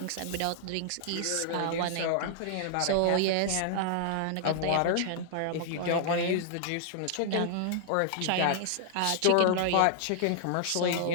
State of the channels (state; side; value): different; both; correlation -0.01